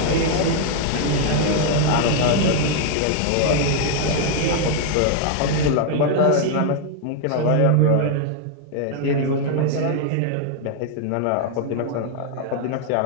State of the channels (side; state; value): both; different; correlation 0.00